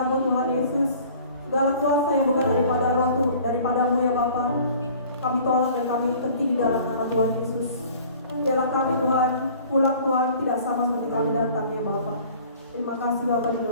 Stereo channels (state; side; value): inverted; both; correlation -0.49